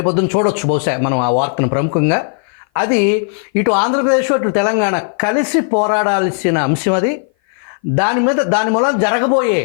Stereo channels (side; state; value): right; silent; 57 dB below the other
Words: చూడొచ్చు బహుశా మనం ఆ వార్తను ప్రముఖంగా. అది ఇటు ఆంధ్రప్రదేశ్ ఇటు తెలంగాణ కలిసి పోరాడాల్సిన అంశం. అది దాని మూలం జరగబోయే